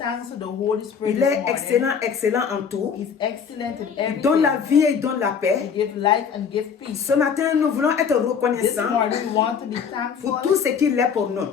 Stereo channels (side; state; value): right; quieter; 6.8 dB